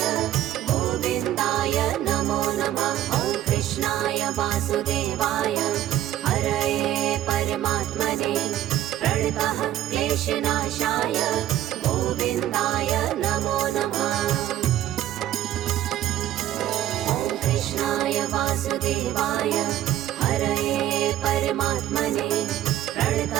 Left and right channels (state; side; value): quieter; left; 12.7 dB